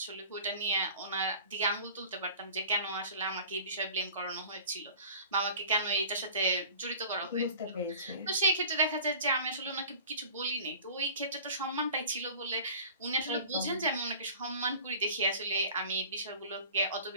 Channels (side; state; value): both; inverted; correlation -0.43